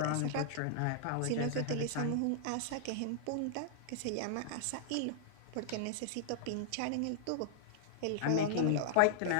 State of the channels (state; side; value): different; both; correlation -0.01